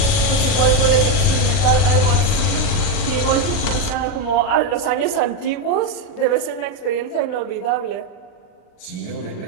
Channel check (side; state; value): right; late; 40 ms